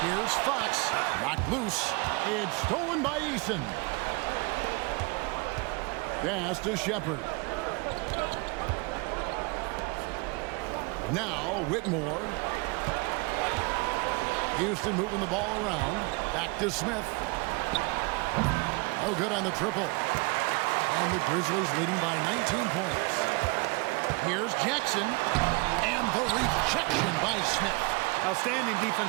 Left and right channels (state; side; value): quieter; left; 28.3 dB